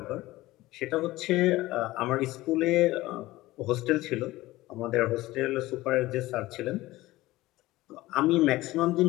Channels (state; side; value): quieter; right; 17.9 dB